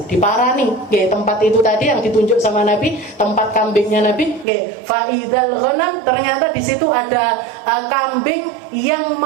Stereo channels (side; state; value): left; drops out; at 4.5 s